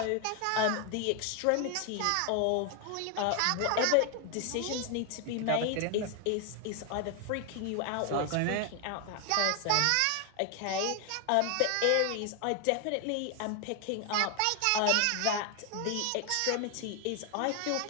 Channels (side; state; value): both; different; correlation 0.00